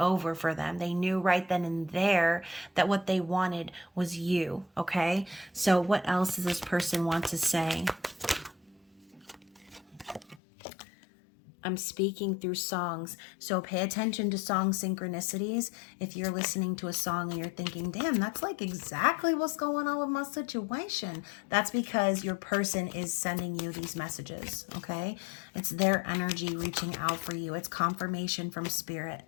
for them. They knew right then and there that what they wanted was you, okay? So what else does this person want to say? I'm speaking through songs. So pay attention to song synchronicities. If you're listening to a song and you're thinking, damn, that's like exactly what's going on with my situation, that's because your person is sending you these messages, okay? It's their energy reaching out for you. It's confirmation from Spirit.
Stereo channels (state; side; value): drops out; right; at 10.4 s